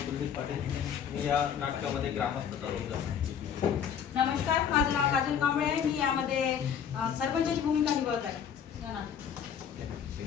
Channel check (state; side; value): quieter; right; 8.2 dB